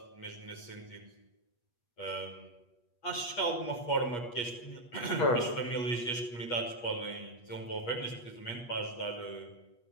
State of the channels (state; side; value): late; right; 8.4 ms